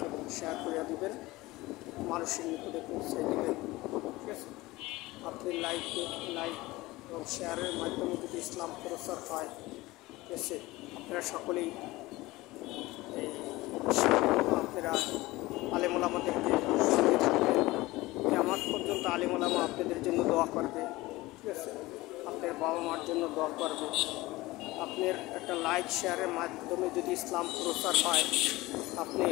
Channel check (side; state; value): right; quieter; 19.8 dB